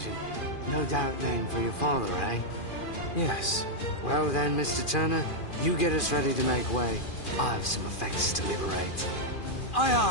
No doubt named for your father, eh? Yes. Well then, Mr. Turner, you get us ready to make way. I have some effects to liberate. Aye,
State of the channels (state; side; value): late; right; 2.4 ms